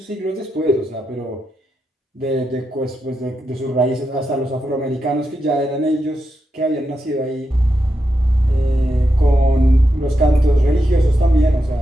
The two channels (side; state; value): both; normal; correlation 0.86